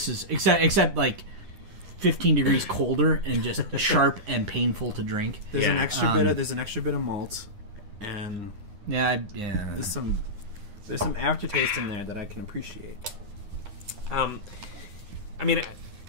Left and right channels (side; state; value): left; late; 9.7 ms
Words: is except like 15 degrees colder and just sharp and painful to drink. There's an extra bit of malt, and there's some aftertaste in there that I can appreciate. I mean,